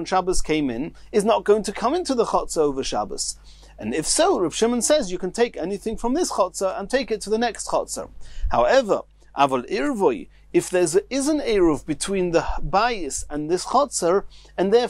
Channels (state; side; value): identical; both; correlation 1.00